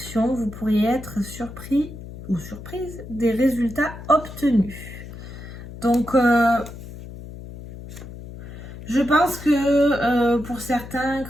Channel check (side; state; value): left; noise; hum, 13 dB below the sound